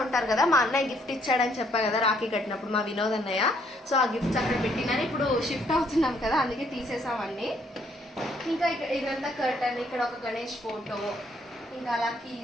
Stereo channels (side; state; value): both; normal; correlation 0.68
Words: ఉంటారు కదా, మా అన్నయ్య గిఫ్ట్ ఇచ్చాడని చెప్పా కదా రాఖీ కట్టినప్పుడు, మా వినోద్ అన్నయ్య. సో ఆ గిఫ్ట్స్ అక్కడ పెట్టినని ఇప్పుడు షిఫ్ట్ అవుతున్నాం కదా, అందుకే తీసేసాం అన్నీ. ఇంకా ఇదంతా కర్టన్, ఇక్కడ ఒక గణేష్ ఫోటో, ఇంకా అలా